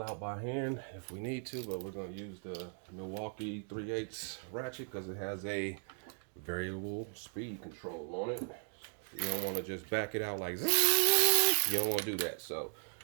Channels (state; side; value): silent; left; 53 dB below the other